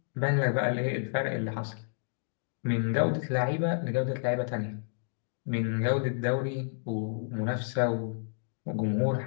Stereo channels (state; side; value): silent; right; digital silence